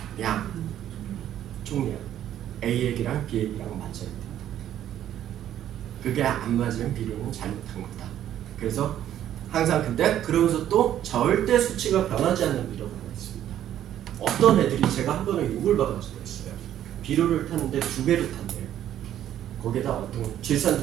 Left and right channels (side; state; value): left; quieter; 11.3 dB